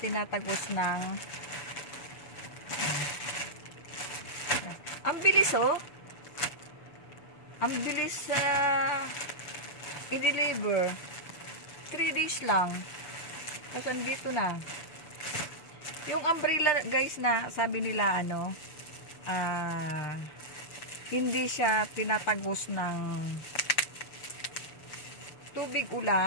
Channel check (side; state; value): right; late; 7.0 ms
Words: ng ang bilis oh. Ang bilis i-deliver. 3 days lang. Tapos andito na. Yung umbrella guys na sabi nila hindi siya tinatagos ng tubig